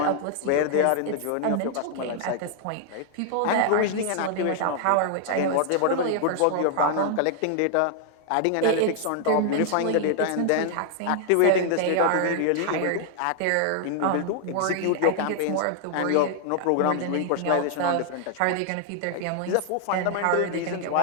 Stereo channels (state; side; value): different; both; correlation 0.00